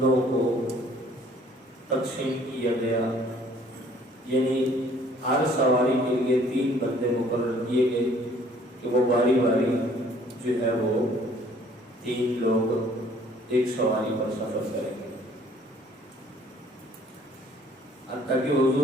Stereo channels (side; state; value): both; normal; correlation 0.57